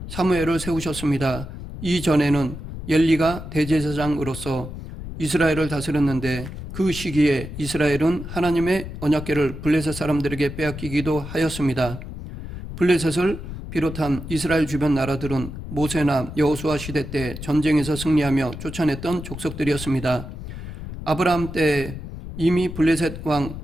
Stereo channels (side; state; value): left; noise; rumble, 10 dB below the sound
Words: 사무엘을 세우셨습니다. 이전에는 엘리가 대제사장으로서 이스라엘을 다스렸는데 그 시기에 이스라엘은 하나님의 언약궤를 블레셋 사람들에게 빼앗기기도 하였습니다. 블레셋을 비롯한 이스라엘 주변 나라들은 모세나 여호수아 시대 때 전쟁에서 승리하며 쫓아냈던 족속들이었습니다. 아브라함 때 이미 블레셋 왕